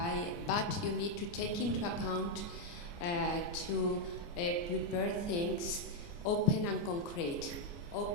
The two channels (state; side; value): late; right; 29 ms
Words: but you need to take into account to prepare things open and concrete.